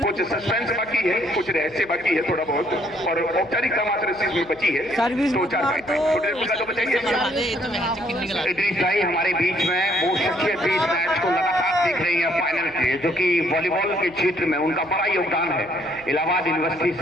कुछ सस्पेंस बाकी है, कुछ रहस्य बाकी है थोड़ा बहुत, और औपचारिकता मात्र इस चीज में बची है। तो 4 तो बचाइए। इदरीस भाई हमारे बीच में वो शख्सियत भी इस मैच को लगातार देख रही है फाइनल के, जो कि वॉलीबॉल के क्षेत्र में उनका बड़ा योगदान है। इलाहाबाद यूनिवर्सिटी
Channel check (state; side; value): noise; right; hum, 23 dB below the sound